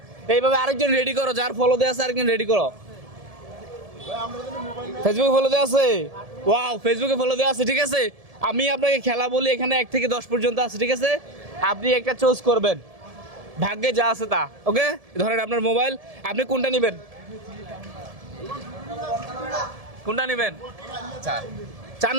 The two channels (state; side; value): late; left; 1.7 ms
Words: এইভাবে আরেকজন রেডি করো, যার ফলো দেওয়া আছে আরেকজন রেডি করো। ফেসবুকে ফলো দেওয়া আছে? ওয়াও, ফেসবুকে ফলো দেওয়া আছে। ঠিক আছে, আমি আপনাকে খেলা বলি, এখানে 1 থেকে 10 পর্যন্ত আছে। ঠিক আছে, আপনি একটা চুজ করবেন, ভাগ্যে যা আছে তা। ওকে, ধরেন আপনার মোবাইল, আপনি কোনটা নেবেন? কোনটা নেবেন? 4